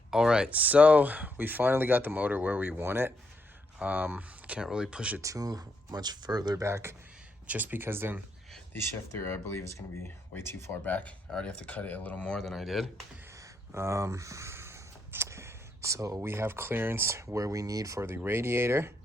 All right, so we finally got the motor where we want it. Can't really push it too much further back, just because then the shifter, I believe, is going to be way too far back. I already have to cut it a little more than I did. So we have clearance where we need for the radiator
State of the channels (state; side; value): normal; both; correlation 0.77